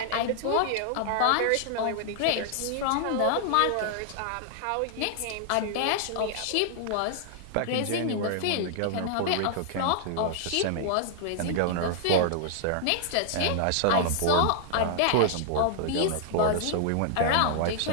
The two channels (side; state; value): both; different; correlation -0.01